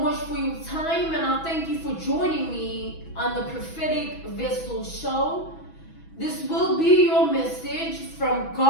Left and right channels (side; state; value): right; late; 6.1 ms